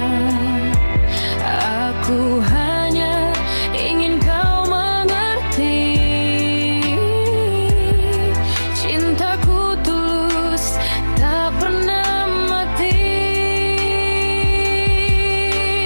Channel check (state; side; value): inverted; both; correlation -1.00